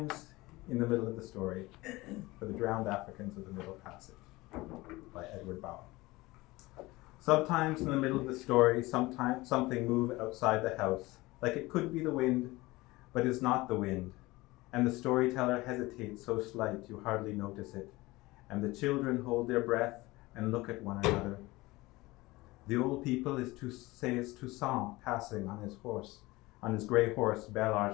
in the middle of the story, for the drowned Africans of the Middle Passage, by Edward Bowen. Sometimes in the middle of the story, sometimes something moves outside the house, like it could be the wind, but is not the wind. And the storyteller hesitates so slight you hardly notice it. And the children hold their breath and look at one another. The old people says Toussaint passing on his grey horse, Bel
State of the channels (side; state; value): right; quieter; 20.7 dB